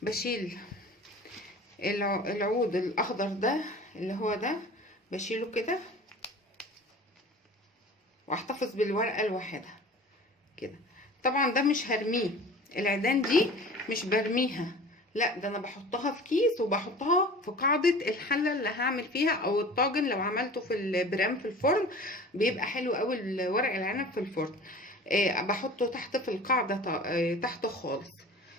بشيل العود الاخضر ده اللي هو ده، بشيله كده واحتفظ بالورقه لوحدها كده. طبعا ده مش هرميه، العيدان دي مش برميها، لا ده انا بحطها في كيس وبحطها في قاعده الحله اللي هعمل فيها، او الطاجن لو عملته في البرام في الفرن بيبقى حلو قوي ورق العنب في الفرن. بحطه تحت في القاعده، تحت خالص.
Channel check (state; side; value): normal; both; correlation 0.41